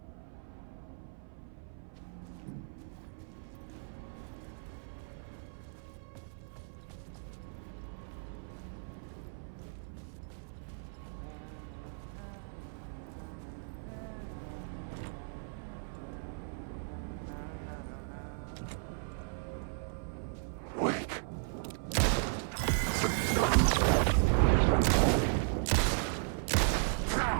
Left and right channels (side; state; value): left; silent; 54 dB below the other